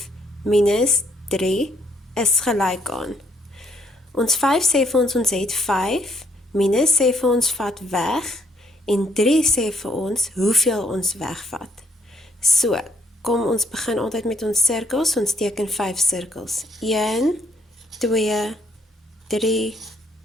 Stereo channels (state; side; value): normal; both; correlation 0.70